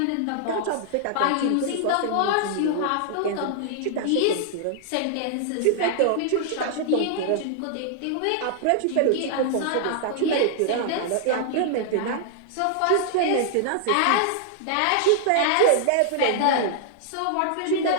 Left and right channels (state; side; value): different; both; correlation -0.01